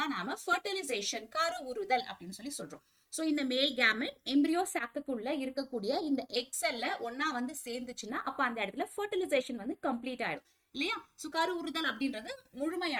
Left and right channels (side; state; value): both; identical; correlation 1.00